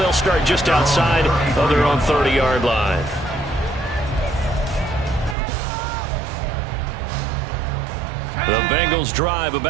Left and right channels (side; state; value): left; drops out; at 5.4 s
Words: start just outside of their own 30-yard line. The Bengals drive